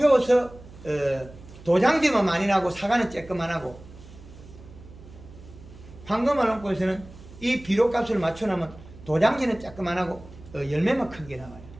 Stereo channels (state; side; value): noise; right; hum, 19 dB below the sound